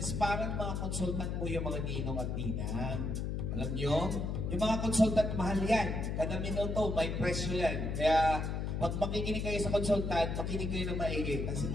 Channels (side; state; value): left; noise; hum, 2 dB below the sound